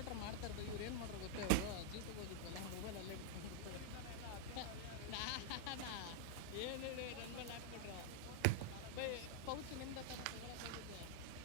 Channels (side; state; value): both; different; correlation -0.01